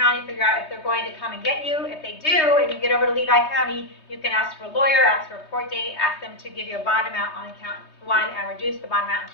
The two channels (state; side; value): late; right; 3.2 ms